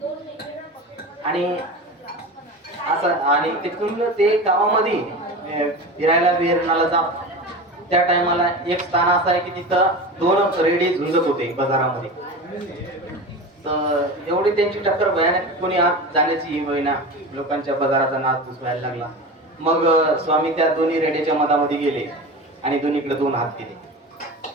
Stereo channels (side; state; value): both; normal; correlation 0.29